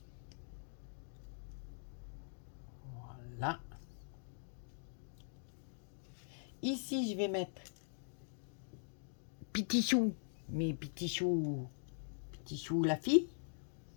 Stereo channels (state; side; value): silent; right; digital silence